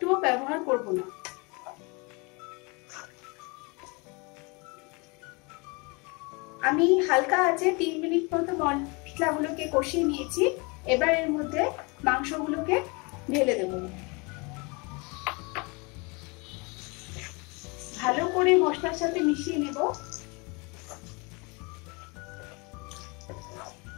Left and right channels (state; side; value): quieter; right; 29.2 dB